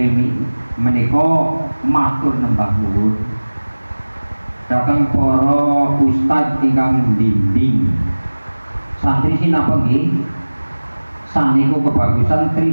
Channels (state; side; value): inverted; both; correlation -1.00